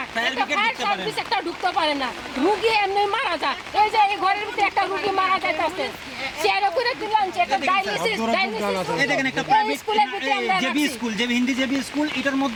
একটা ফায়ার সার্ভিস একটা ঢুকতে পারে না, রুগী এমনি মারা যায়। এই যে এই ঘরের ভিতরে একটা রুগী মারা যাইতেছে, চেয়ারে করে দিলাম, একটা ডায়ালিসিস এই দেখেন একটা প্রাইভেট জেবি স্কুল এটার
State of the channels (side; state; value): both; identical; correlation 1.00